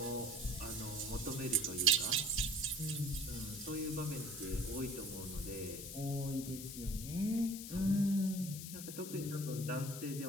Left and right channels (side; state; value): left; noise; hiss, 9 dB below the sound